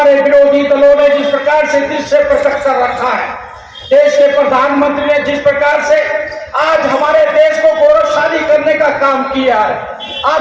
विरोधी दलों ने जिस प्रकार से दृश्य प्रकट कर रखा है, देश के प्रधानमंत्री ने जिस प्रकार से आज हमारे देश को गौरवशाली करने का काम किया है,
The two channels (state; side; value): identical; both; correlation 1.00